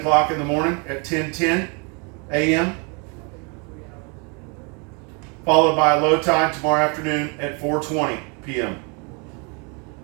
in the morning at 10:10 a.m. Followed by a low tide tomorrow afternoon at 4:20 p.m.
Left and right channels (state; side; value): quieter; left; 33.8 dB